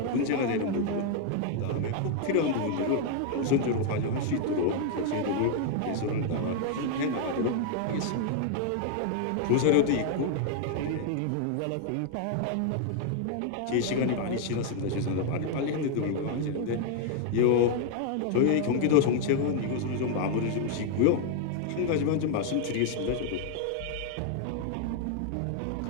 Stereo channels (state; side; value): different; both; correlation 0.00